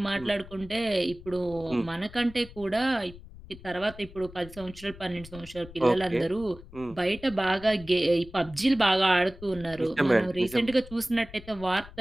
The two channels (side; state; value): left; noise; rumble, 18 dB below the sound